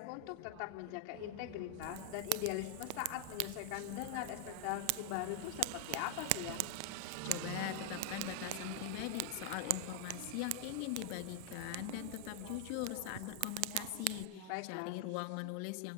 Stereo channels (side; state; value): both; different; correlation 0.00